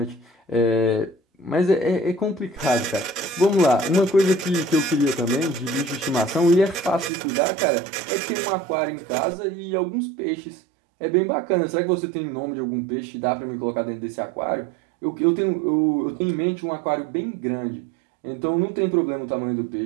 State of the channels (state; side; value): drops out; left; at 7.1 s